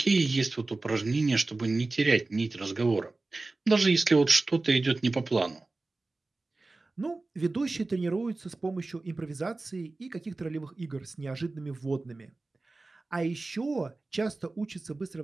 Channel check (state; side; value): quieter; left; 3.3 dB